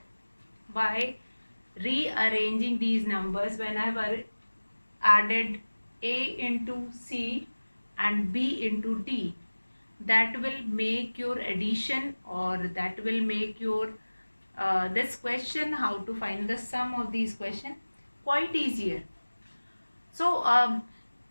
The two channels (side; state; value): both; inverted; correlation -1.00